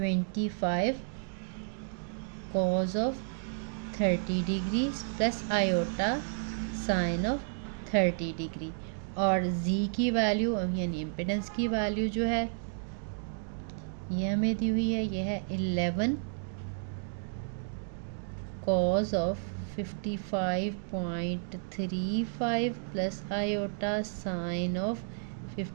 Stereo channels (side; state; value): left; silent; digital silence